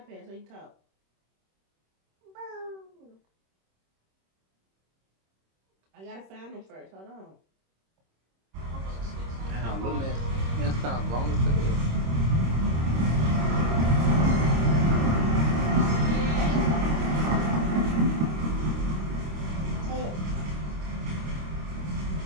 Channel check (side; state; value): left; late; 26 ms